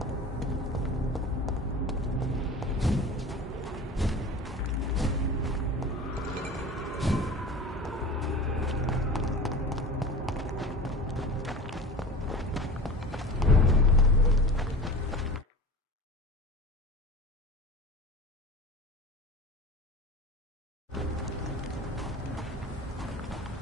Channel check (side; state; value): both; normal; correlation 0.35